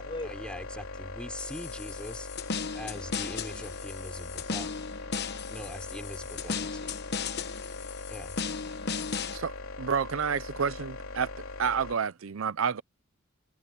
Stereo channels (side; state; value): both; normal; correlation -0.05